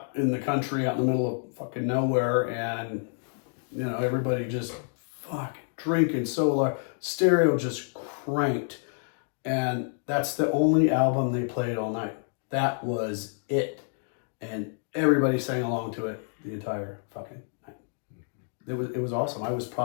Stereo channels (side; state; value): right; silent; 59 dB below the other